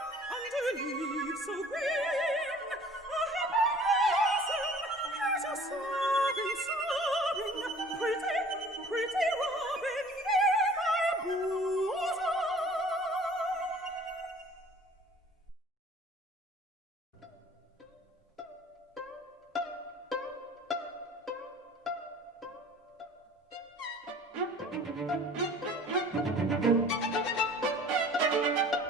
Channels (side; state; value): both; normal; correlation 0.49